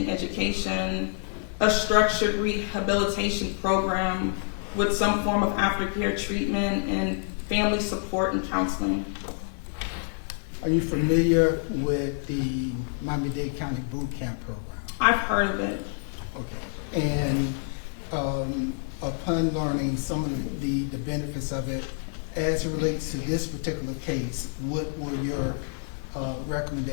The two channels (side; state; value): right; silent; digital silence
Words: education, a structured rehabilitation program with some form of aftercare treatment, and family support and counseling. Are you familiar with the Miami-Dade County Boot Camp program? I've heard of it. Okay. And upon learning some of the benefits of it, as it relates to this particular case, what were your